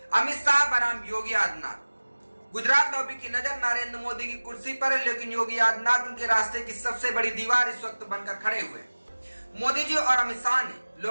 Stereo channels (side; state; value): both; inverted; correlation -1.00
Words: अमित शाह बनाम योगी आदित्यनाथ। गुजरात लॉबी की नजर नरेंद्र मोदी की कुर्सी पर है, लेकिन योगी आदित्यनाथ उनके रास्ते की सबसे बड़ी दीवार इस वक्त बनकर खड़े हुए हैं। मोदी जी और अमित शाह ने